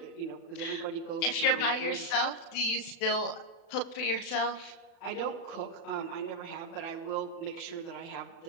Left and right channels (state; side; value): late; right; 36 ms